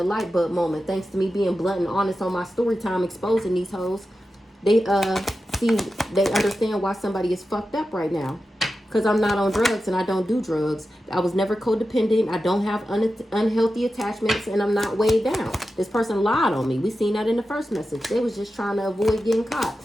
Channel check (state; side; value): normal; both; correlation 0.92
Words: light bulb moment. Thanks to me being blunt and honest on my story time, exposing these hoes. They understand why somebody is fucked up right now. Because I'm not on drugs and I don't do drugs. I was never codependent. I don't have unhealthy attachments and I'm not weighed down. This person lied on me. We seen that in the first message. They was just trying to avoid getting caught.